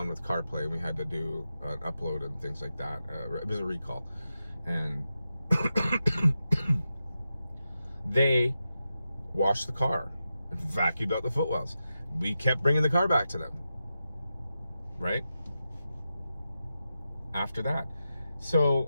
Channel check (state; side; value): inverted; both; correlation -0.90